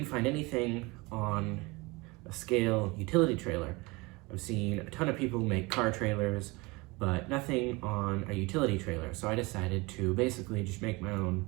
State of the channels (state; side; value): quieter; left; 24.4 dB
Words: find anything on a scale utility trailer. I've seen a ton of people make car trailers, but nothing on a utility trailer, so I decided to basically just make my own